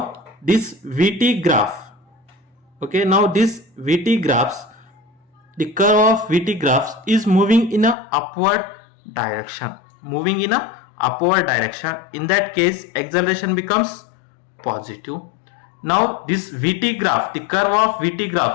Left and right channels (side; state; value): right; drops out; at 8.0 s